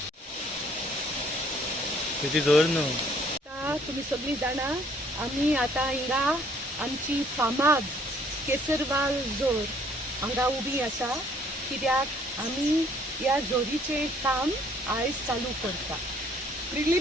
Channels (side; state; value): both; normal; correlation 0.61